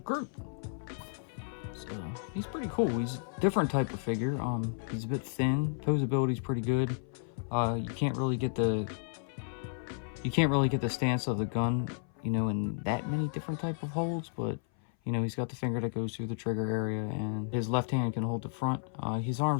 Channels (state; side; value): silent; right; 56 dB below the other